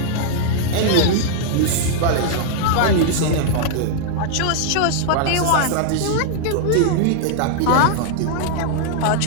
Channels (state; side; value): different; both; correlation -0.01